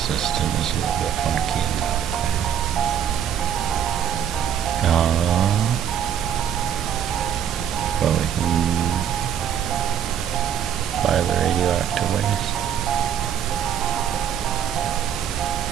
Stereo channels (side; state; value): left; quieter; 9.2 dB